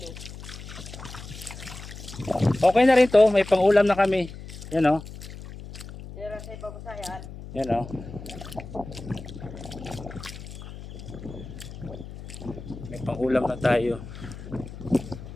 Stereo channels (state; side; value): noise; left; hum, 13 dB below the sound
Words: Okay na rin to, may pang-ulam na kami. Yan o. Pero sa ipagusayan. Yan o. May pang-ulam na tayo.